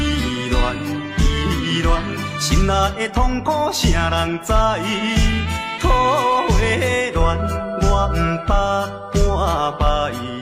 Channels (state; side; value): identical; both; correlation 1.00